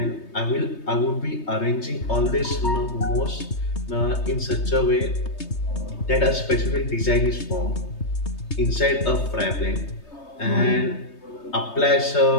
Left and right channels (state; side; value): late; right; 3.2 ms